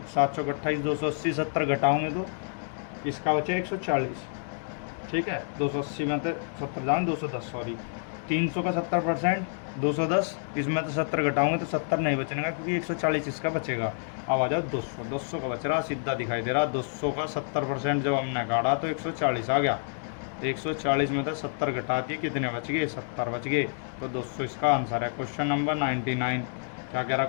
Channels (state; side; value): silent; right; digital silence